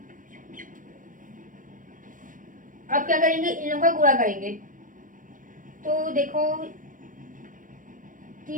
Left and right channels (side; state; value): left; late; 0.39 ms